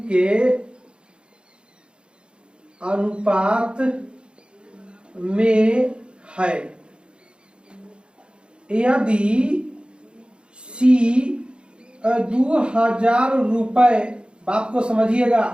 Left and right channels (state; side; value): late; left; 0.054 ms